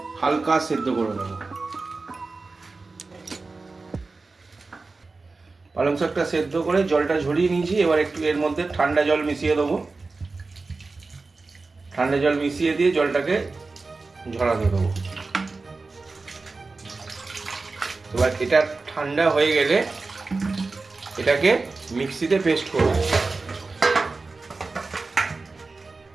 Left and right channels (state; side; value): quieter; left; 3.8 dB